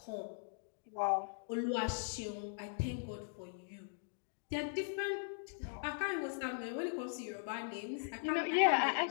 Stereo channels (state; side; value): silent; right; digital silence